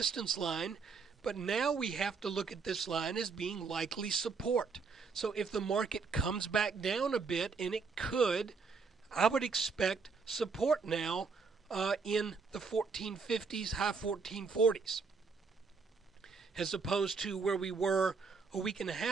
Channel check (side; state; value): left; quieter; 5.0 dB